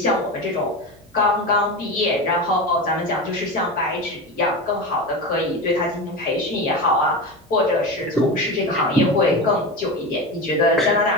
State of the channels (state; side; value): normal; both; correlation 0.23